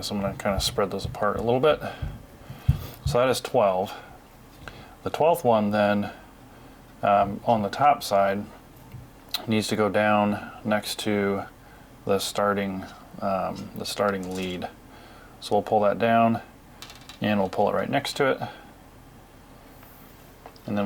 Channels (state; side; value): identical; both; correlation 1.00